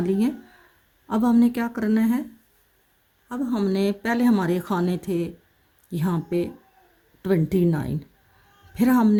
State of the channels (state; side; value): identical; both; correlation 1.00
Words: ली हैं। अब हमने क्या करना है, अब हमने पहले हमारे खाने थे यहाँ पे 29, फिर